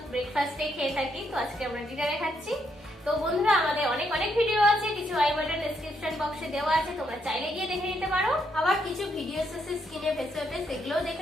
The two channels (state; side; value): normal; both; correlation 0.77